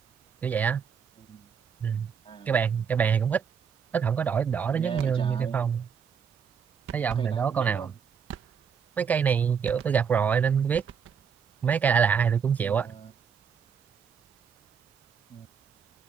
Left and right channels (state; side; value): quieter; left; 6.8 dB